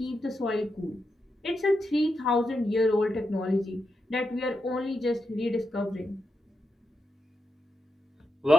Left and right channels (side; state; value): both; normal; correlation 0.86